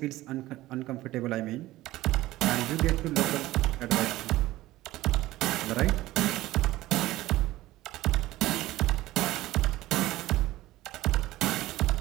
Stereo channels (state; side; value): quieter; left; 16.9 dB